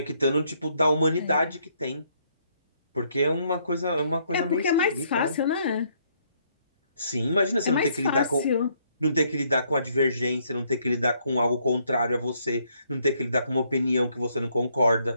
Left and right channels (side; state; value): both; inverted; correlation -0.70